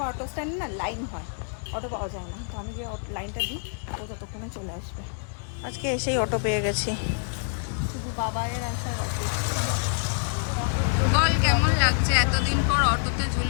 অটো স্ট্যান্ড না লাইন হয়, অটো পাওয়া যায় না, তো আমি যে লাইনটা দিই ও ততক্ষণে চলে আসবে। আজকে এসেই অটো পেয়ে গেছি, শুধু বাবাইয়ের আসার অপেক্ষা। বল কেমন লাগছে এতদিন পর অটোতে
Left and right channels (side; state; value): right; silent; digital silence